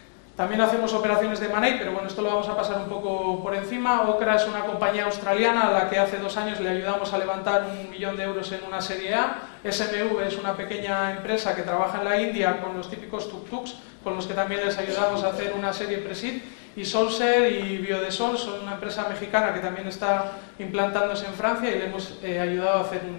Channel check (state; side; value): silent; right; digital silence